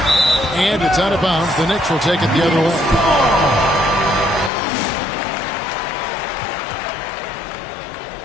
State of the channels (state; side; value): drops out; right; at 4.5 s